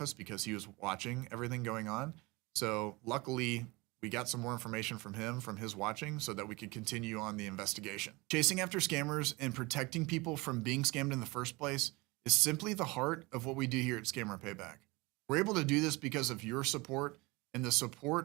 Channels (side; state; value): left; quieter; 24.1 dB